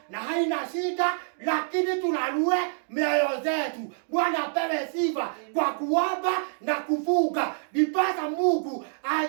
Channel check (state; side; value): silent; left; digital silence